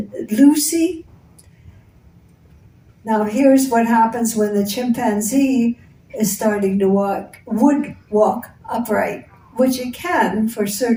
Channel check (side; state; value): both; identical; correlation 1.00